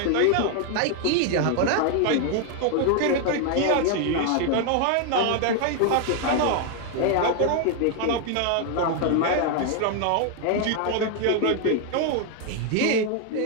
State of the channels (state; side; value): different; both; correlation 0.00